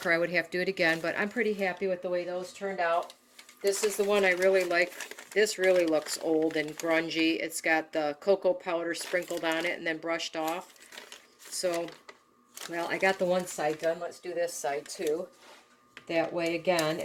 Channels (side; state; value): both; identical; correlation 1.00